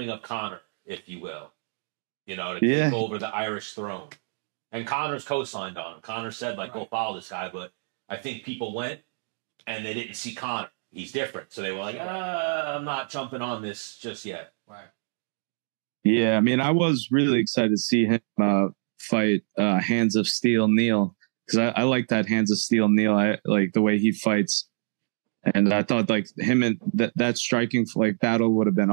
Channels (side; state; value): left; silent; 59 dB below the other